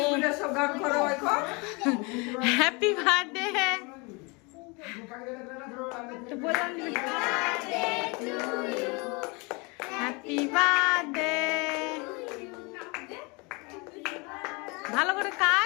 Happy birthday. তো বললাম হ্যাপি বার্থডে। ভালো করে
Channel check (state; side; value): quieter; right; 29.1 dB